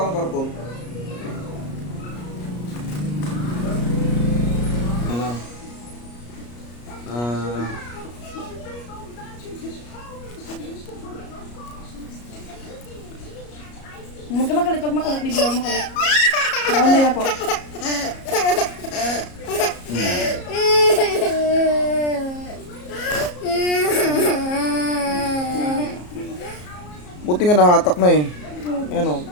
karton. Ano? Huwag ka magalit, pag makulit, bibigyan makulit. Oo, hindi na po. Buti nga nahatak na eh. Ayan o,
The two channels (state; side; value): late; right; 34 ms